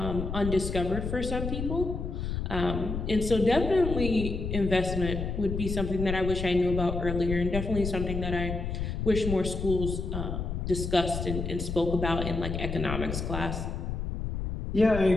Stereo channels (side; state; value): left; noise; rumble, 4 dB below the sound